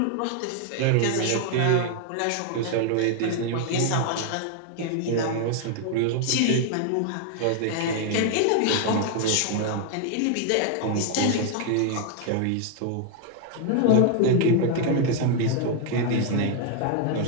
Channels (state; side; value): different; both; correlation 0.00